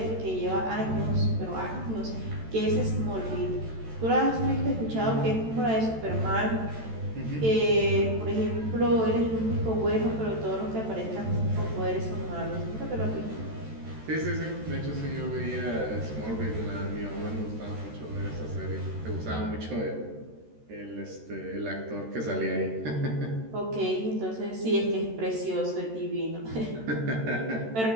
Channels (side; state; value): left; late; 13 ms